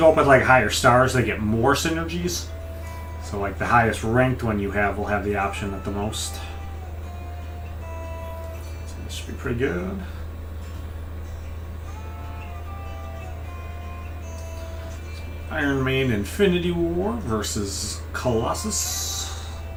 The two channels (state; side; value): identical; both; correlation 1.00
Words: up with like higher stars, they get more synergies. So like the highest ranked one you have will have the option at the most. So this should be pretty good. Iron Man Infinity War versus Colossus.